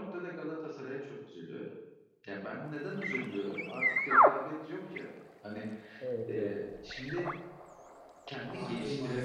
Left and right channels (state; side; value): identical; both; correlation 1.00